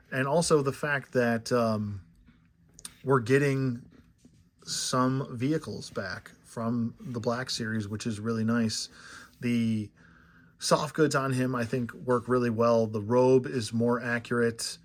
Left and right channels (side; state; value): both; identical; correlation 1.00